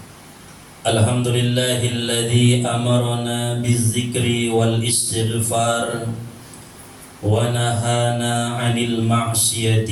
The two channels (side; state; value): both; identical; correlation 1.00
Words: Alhamdulillahilladzi amarna bizzikri wal istighfar wa nahana 'anil